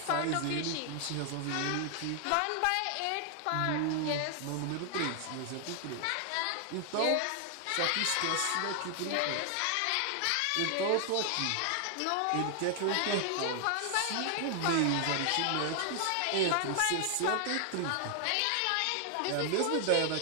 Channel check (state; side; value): different; both; correlation 0.00